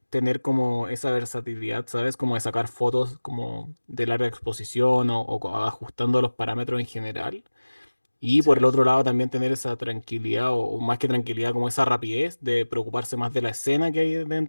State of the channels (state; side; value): inverted; both; correlation -1.00